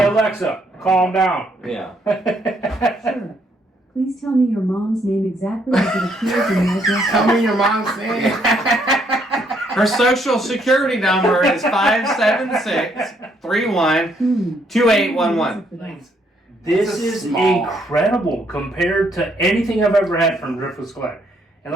Alexa, calm down. Yeah. Sure. Please tell me your mom's name exactly as it appears in your address. Tell me your mom's name. Her social security number is 576-31-2811. This This is is small. incredible compared to anything I've ever had from Driftless Glen. And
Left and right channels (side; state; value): both; normal; correlation 0.70